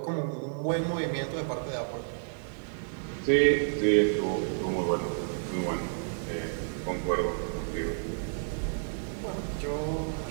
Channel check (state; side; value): silent; left; digital silence